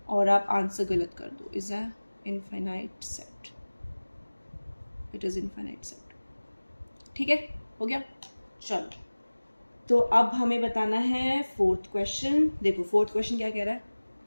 और आप आंसर गलत कर दो। Is a infinite set, it is infinite set, ठीक है, हो गया। चलो, तो अब हमें बताना है फोर्थ क्वेश्चन। देखो, फोर्थ क्वेश्चन क्या कह रहा है?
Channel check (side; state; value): both; inverted; correlation -1.00